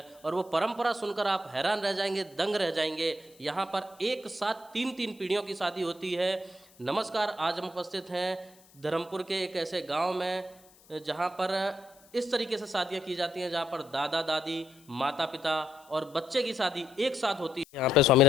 और वो परंपरा सुनकर आप हैरान रह जाएंगे, दंग रह जाएंगे। यहाँ पर एक साथ तीन पीढ़ियों की शादी होती है। नमस्कार, आज हम उपस्थित हैं धर्मपुर के एक ऐसे गाँव में जहाँ पर इस तरीके से शादियाँ की जाती हैं, जहाँ पर दादा दादी, माता पिता और बच्चे की शादी एक साथ होती है। यहाँ पे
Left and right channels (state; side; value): noise; left; hiss, 27 dB below the sound